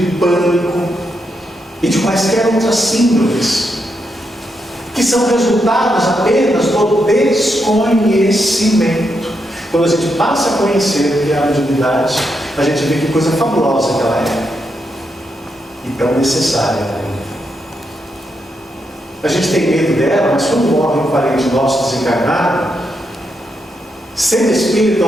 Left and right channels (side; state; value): both; normal; correlation 0.82